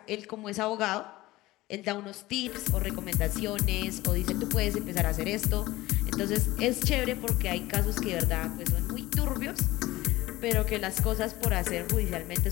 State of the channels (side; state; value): right; quieter; 18.3 dB